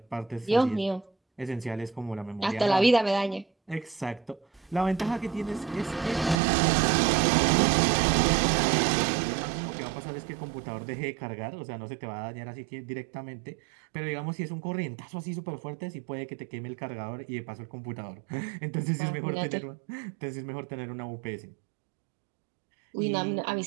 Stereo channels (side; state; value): left; drops out; at 6.4 s